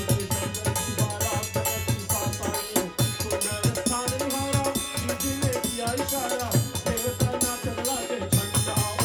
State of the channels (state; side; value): identical; both; correlation 1.00